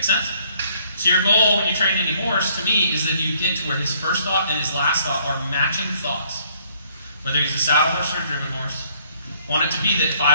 sense? So your goal when you train any horse, to me, is that you get to where his first thought and his last thought are matching thoughts. Whether he's a saddle horse or a driven horse. I want it to be that if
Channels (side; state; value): both; inverted; correlation -0.63